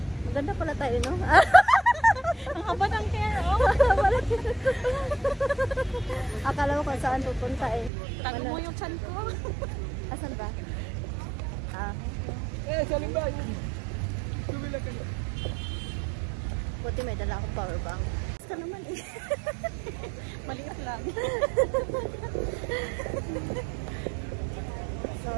Maganda pala tayo, no? Ang haba ng hair, oh. Akala ko kung saan pupunta eh. Tago mo yung chan ko. Asan ba? Salim ba? Tumila ka na. Buti may dala akong power bank. Basta naman eh. Maliit lang.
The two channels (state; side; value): drops out; left; at 7.9 s